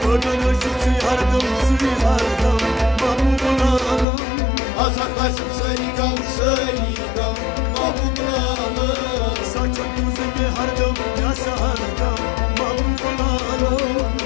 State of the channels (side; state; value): right; drops out; at 4.0 s